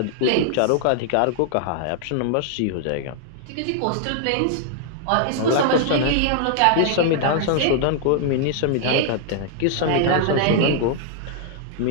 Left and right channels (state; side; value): different; both; correlation -0.01